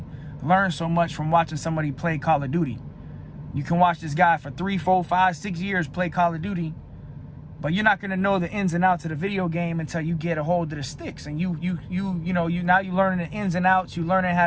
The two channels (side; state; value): both; identical; correlation 1.00